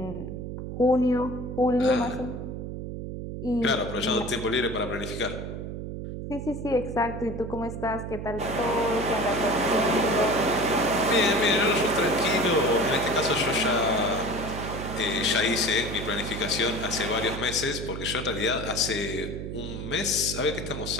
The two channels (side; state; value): right; noise; hum, 7 dB below the sound